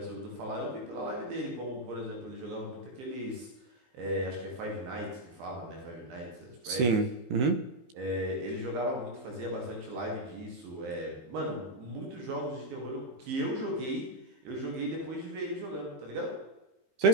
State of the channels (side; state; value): left; late; 16 ms